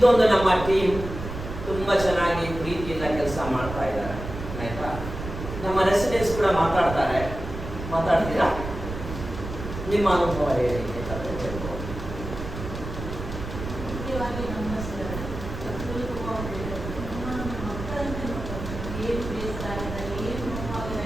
ನಮ್ಮ ಟೀಮ್ ತುಂಬ ಚೆನ್ನಾಗಿ ಪ್ರೀತಿಯಿಂದ ಕೆಲಸ ಮಾಡ್ತಾ ಇದ್ದಾರೆ, ಆಯ್ತಾ. ನಮ್ಮ ರೆಸಿಡೆನ್ಸ್ ಕೂಡ ಮಾತಾಡ್ತೀರಾ, ನಿಮ್ಮ ಅನುಭವ ಹೇಳಿ ಬೇಕಾದ್ರೆ ಹೇಳ್ಬೋದು. ಮುಖ್ಯವಾಗಿ ನಮ್ಮ ಮಕ್ಕಳಂತೆ ಏನು ಬೇಸರ ಆಗಿದ್ದಾರೆ, ಏನು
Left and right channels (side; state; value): right; noise; rumble, 8 dB below the sound